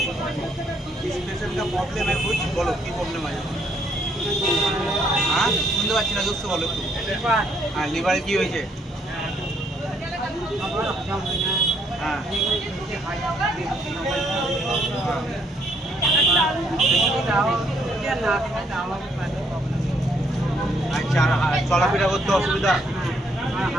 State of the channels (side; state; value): both; normal; correlation 0.69